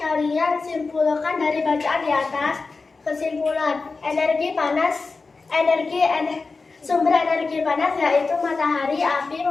simpulkan dari bacaan di atas? Kesimpulan, energi panas, sumber energi panas yaitu matahari, api,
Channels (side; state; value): right; quieter; 4.1 dB